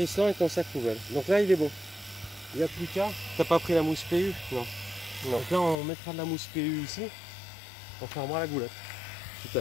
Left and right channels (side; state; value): right; drops out; at 5.8 s